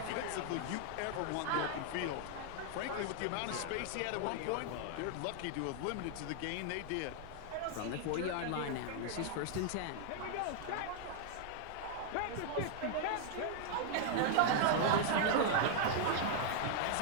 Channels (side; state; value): both; different; correlation 0.00